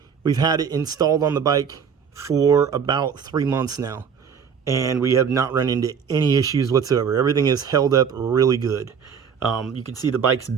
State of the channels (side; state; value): left; quieter; 7.0 dB